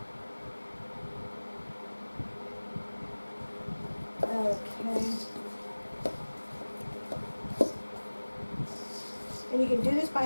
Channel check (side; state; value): both; inverted; correlation -1.00